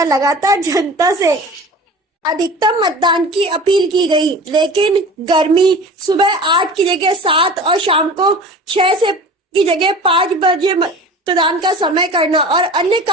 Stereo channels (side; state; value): both; normal; correlation 0.38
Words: लगातार जनता से अधिकतम मतदान की अपील की गई, लेकिन गर्मी सुबह 8 की जगह 7 और शाम को 6 से की जगह 5 बजे मतदान का समय करना और अन्य